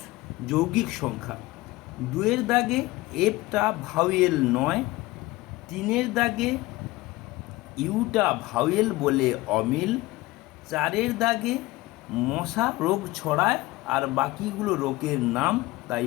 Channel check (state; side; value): quieter; right; 19.7 dB